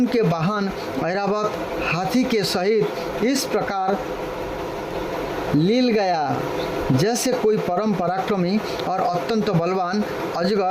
वाहन ऐरावत हाथी के सहित इस प्रकार लील गया जैसे कोई परम पराक्रमी और अत्यंत बलवान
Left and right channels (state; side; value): identical; both; correlation 1.00